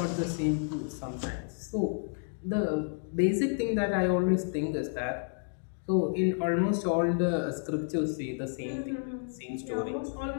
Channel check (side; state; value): right; silent; 57 dB below the other